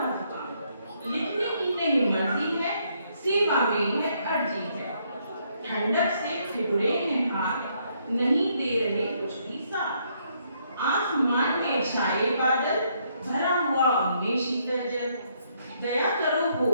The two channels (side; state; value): both; inverted; correlation -0.72